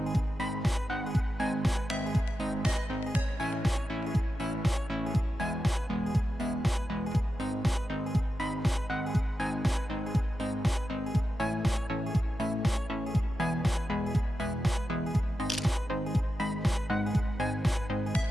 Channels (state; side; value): normal; both; correlation 0.90